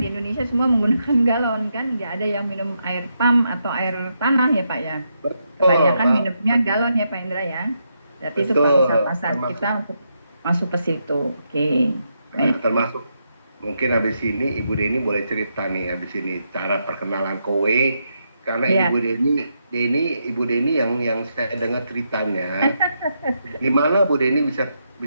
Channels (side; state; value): both; inverted; correlation -0.81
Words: Indonesia semua menggunakan galon kan. Nggak ada yang minum air pump atau air tanah ya Pak ya. betul, Kebanyakan minumnya galon ya Pak Indra ya. Berarti itu pangsa betul, pasar termasuk kita untuk masuk ke situ. Oke. Baik. termasuk mungkin habis ini Ibu Deni boleh cerita nih habis ini cara perkenalan kowe, karena Iya. Ibu Deni yang saya dengar ceritanya gimana Bu Deni bisa